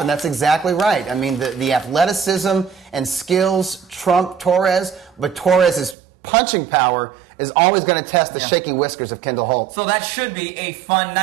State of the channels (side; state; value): left; drops out; at 6.0 s